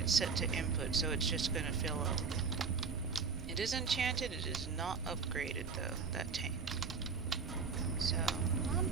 set to input, so it's just going to fill up. It is enchanted, it is not upgraded though, that tank. So, I'm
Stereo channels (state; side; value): quieter; left; 5.3 dB